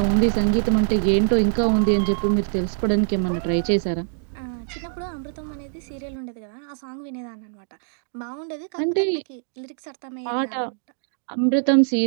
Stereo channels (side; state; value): left; silent; digital silence